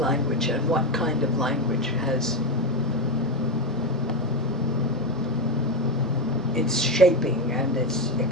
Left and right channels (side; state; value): both; normal; correlation 0.11